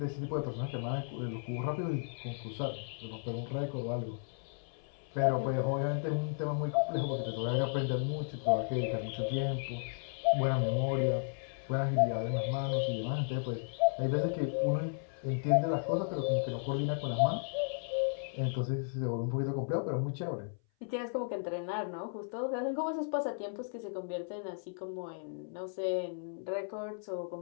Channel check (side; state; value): right; silent; 55 dB below the other